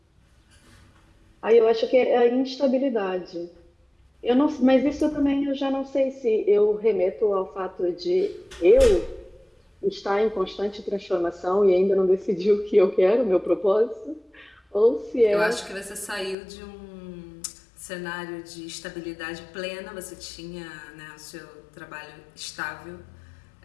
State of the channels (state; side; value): drops out; right; at 16.4 s